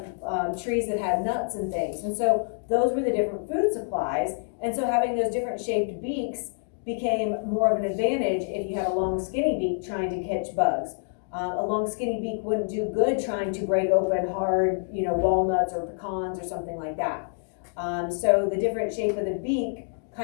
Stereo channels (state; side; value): silent; right; digital silence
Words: trees that had nuts and things. And so those were the different food supplies. And so having those different shaped beaks became more of an advantage if you had a long skinny beak trying to catch bugs. A long skinny beak wouldn't do good trying to break open hard, walnuts or pecans or something like that. So the different shape of the beak